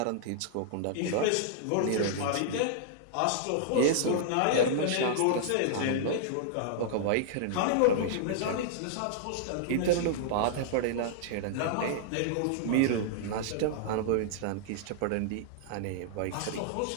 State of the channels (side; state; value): both; different; correlation -0.01